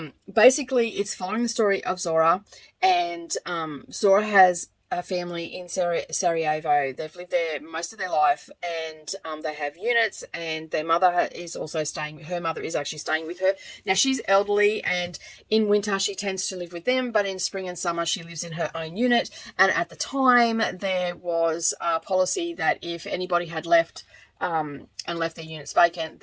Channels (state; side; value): identical; both; correlation 1.00